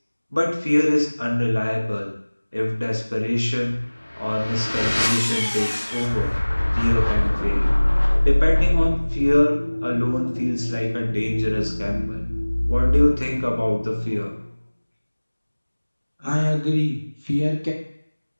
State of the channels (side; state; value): both; inverted; correlation -1.00